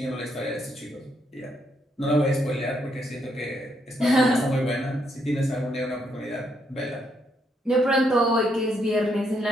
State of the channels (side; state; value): both; normal; correlation 0.75